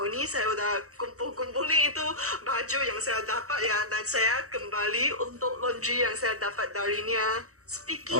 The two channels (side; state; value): left; late; 0.65 ms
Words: ni saya udah kumpul-kumpulin itu baju yang saya dapat ya, dan saya kembali untuk laundry yang saya dapat darinya. Speaking